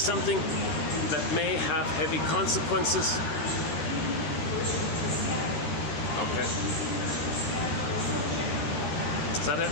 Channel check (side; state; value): right; late; 12 ms